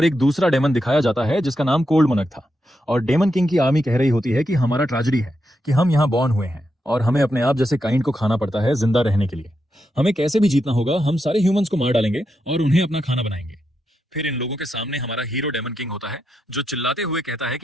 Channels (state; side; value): normal; both; correlation 0.84